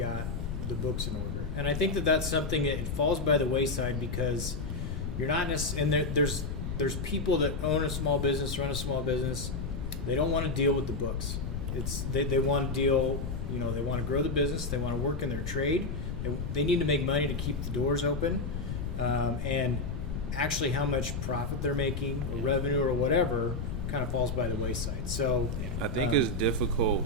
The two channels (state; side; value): noise; left; rumble, 4 dB below the sound